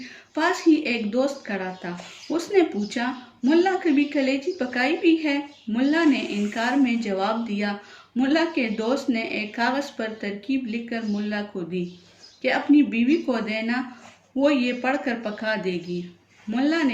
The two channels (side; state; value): both; identical; correlation 1.00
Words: پاس ہی ایک دوست کھڑا تھا۔ اس نے پوچھا، ملا کبھی کلیجی پکائی بھی ہے؟ ملا نے انکار میں جواب دیا۔ ملا کے دوست نے ایک کاغذ پر ترکیب لکھ کر ملا کو دی کہ اپنی بیوی کو دینا، وہ یہ پڑھ کر پکا دے گی۔ ملا